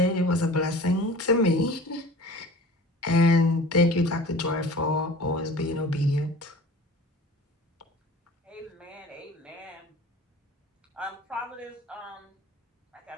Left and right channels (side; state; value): both; normal; correlation 0.41